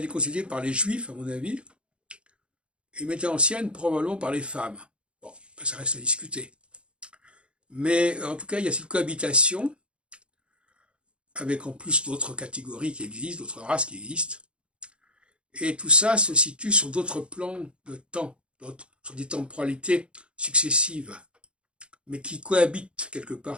est constituée par les juifs, à mon avis, et l'humanité ancienne, probablement par les femmes. Bon, ça reste à discuter. Mais en tout cas, il y a cette cohabitation, avec en plus d'autres catégories qui existent, d'autres races qui existent. Et tout ça se situe sur d'autres plans de temps, sur des temporalités successives, mais qui cohabitent quelque part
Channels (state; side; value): late; left; 0.056 ms